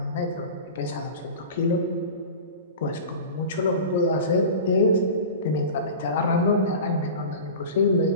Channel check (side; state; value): both; inverted; correlation -0.33